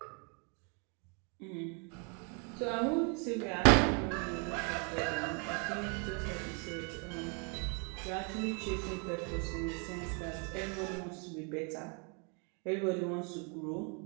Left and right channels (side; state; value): left; quieter; 35.9 dB